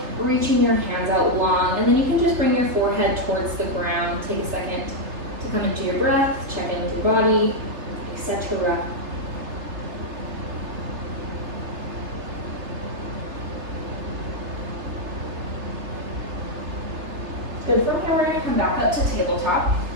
reaching your hands out long, and then you can just bring your forehead towards the ground. Take a second to come into your breath, check into your body, etc. Good. From here, we're going to come back up to tabletop.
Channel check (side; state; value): left; late; 3.3 ms